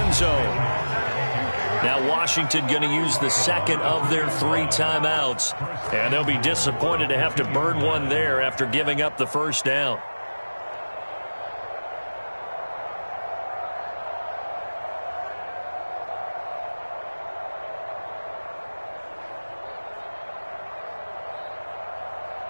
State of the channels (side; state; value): both; inverted; correlation -1.00